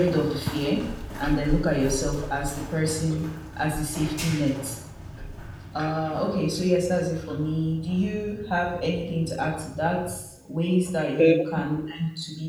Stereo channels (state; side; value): identical; both; correlation 1.00